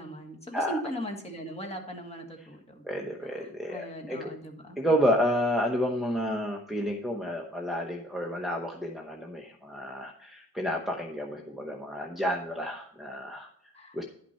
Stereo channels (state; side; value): normal; both; correlation 0.59